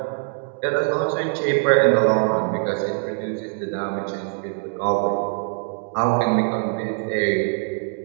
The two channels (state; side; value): silent; left; digital silence